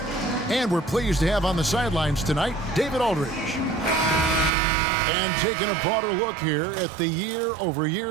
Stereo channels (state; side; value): drops out; left; at 4.5 s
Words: and we're pleased to have on the sidelines tonight David Aldridge. And taking a broader look here at the